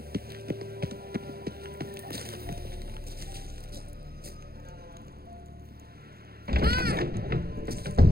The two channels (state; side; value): late; left; 0.45 ms